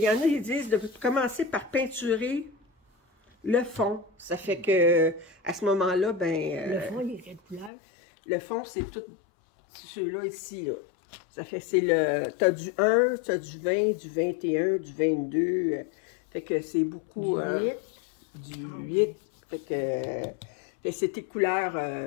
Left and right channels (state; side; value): drops out; right; at 7.7 s